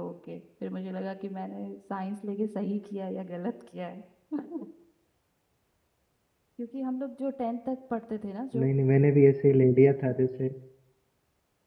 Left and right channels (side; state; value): both; identical; correlation 1.00